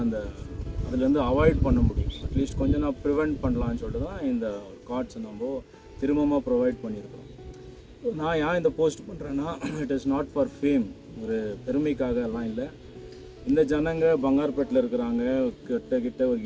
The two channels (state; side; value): identical; both; correlation 1.00